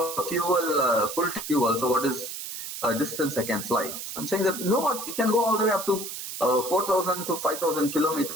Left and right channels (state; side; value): noise; right; hiss, 8 dB below the sound